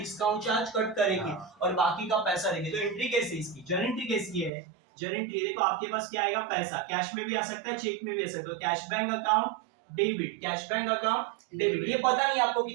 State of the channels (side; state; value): left; drops out; at 4.5 s